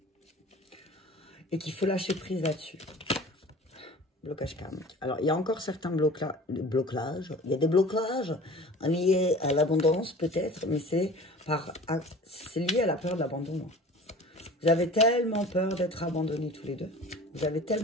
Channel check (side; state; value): both; normal; correlation 0.42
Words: Et qu'il faut lâcher prise là-dessus. Blocage karmique. Alors, il y a encore certains blocages. Il y a des blocages liés à l'abondance peut-être, mais c'est lié à la peur de l'abandon. Vous avez tellement peur d'être abandonnés tous les deux. Vous avez